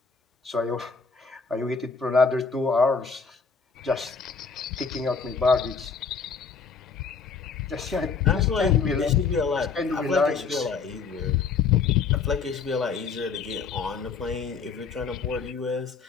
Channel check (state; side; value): quieter; right; 5.4 dB